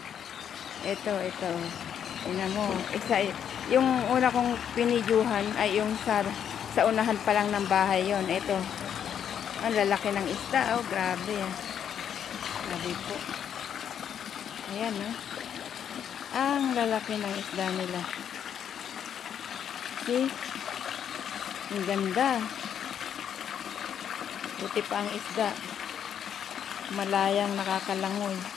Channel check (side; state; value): right; quieter; 8.8 dB